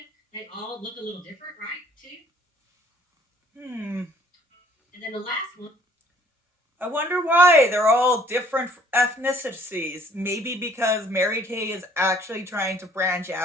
they all look a little different, right, too? And then the last one. I wonder why they're all different ethnicities. Maybe because Mary Kay is actually trying to branch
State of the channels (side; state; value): both; normal; correlation 0.58